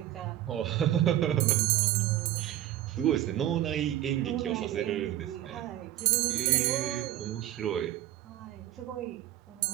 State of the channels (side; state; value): left; quieter; 13.1 dB